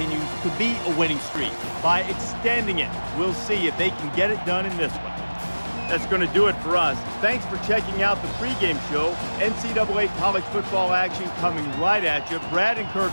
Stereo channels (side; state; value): both; inverted; correlation -1.00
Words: to be a winning streak. By extending it, we'll see if they can get it done in this one. That's going to do it for us. Thanks for checking out the pregame show. NCAA college football action coming right at you. Brad and